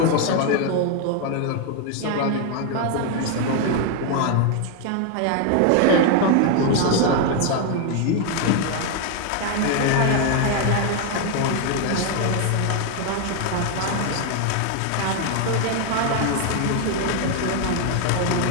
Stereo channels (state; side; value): different; both; correlation 0.01